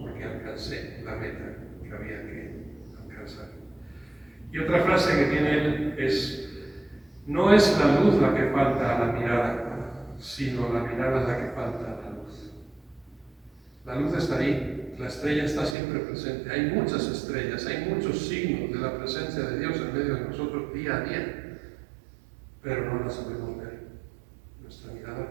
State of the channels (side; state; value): left; drops out; at 15.8 s